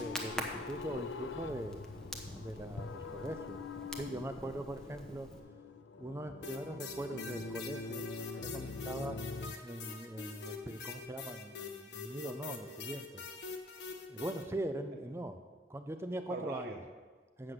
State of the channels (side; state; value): both; normal; correlation 0.58